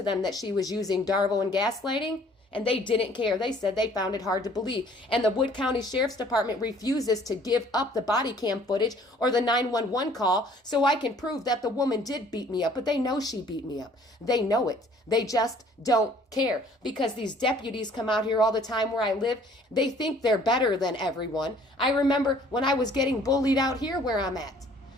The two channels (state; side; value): normal; both; correlation 0.56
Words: them that she was using Darvo and gaslighting, and they didn't care. They said they found it hard to believe. And the Wood County Sheriff's Department refuses to give up the body cam footage or the 911 call so I can prove that the woman did beat me up. But they know she beat me up. They know it. They just don't care, because these deputies come out here all the time where I live. They think they're better than everyone. I remember when I was getting bullied out here where I'm at.